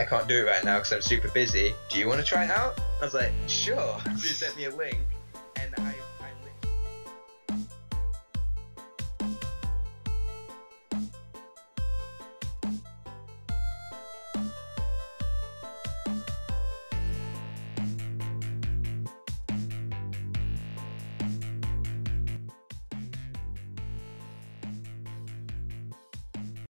can't do it right now because I'm super busy. Do you want to try it out?" I was like, "Sure." So he sent me a link,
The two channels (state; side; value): inverted; both; correlation -1.00